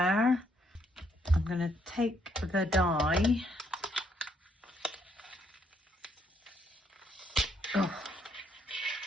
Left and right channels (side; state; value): both; normal; correlation 0.71